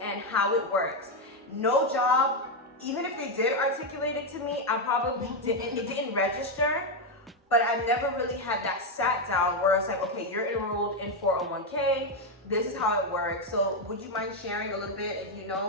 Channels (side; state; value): both; normal; correlation 0.05